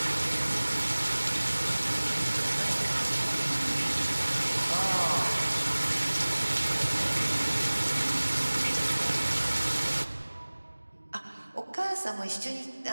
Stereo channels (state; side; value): inverted; both; correlation -1.00